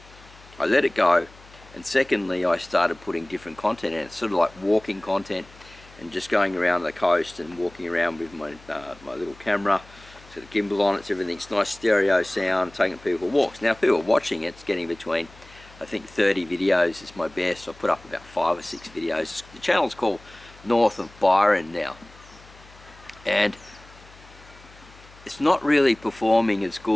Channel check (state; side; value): noise; left; hum, 23 dB below the sound